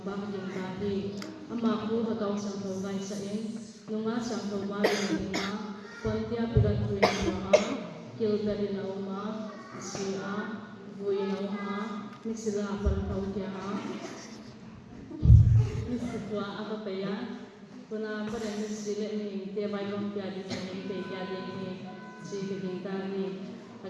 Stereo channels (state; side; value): identical; both; correlation 1.00